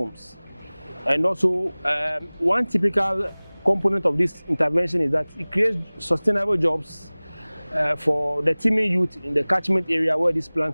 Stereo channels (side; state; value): both; inverted; correlation -1.00